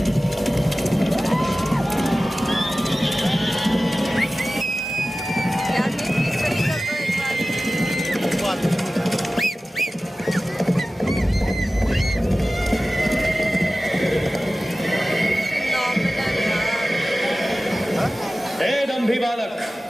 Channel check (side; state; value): both; normal; correlation 0.96